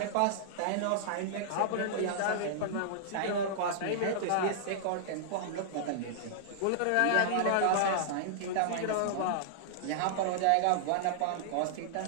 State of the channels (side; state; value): both; different; correlation -0.01